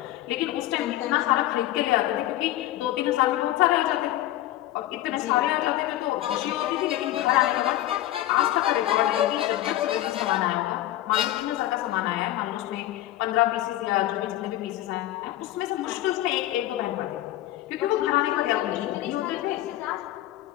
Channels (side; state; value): right; quieter; 14.5 dB